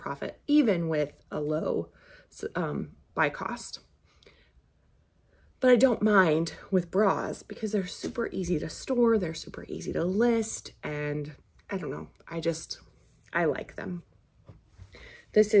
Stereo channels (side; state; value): both; identical; correlation 1.00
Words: even with a low buy cost. But I don't mind with bras because they're super easy to store, they're super easy to list, and I don't know, I like them. This